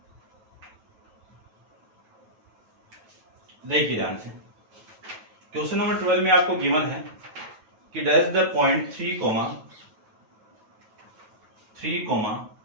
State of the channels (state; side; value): late; left; 9.1 ms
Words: देखिए ध्यान से, क्वेश्चन नंबर 12 में आपको गिवन है कि dash the point